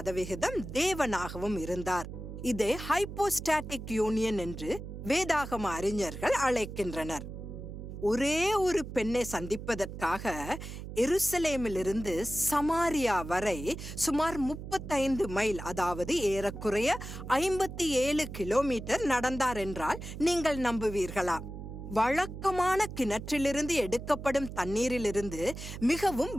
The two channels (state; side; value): noise; right; hum, 10 dB below the sound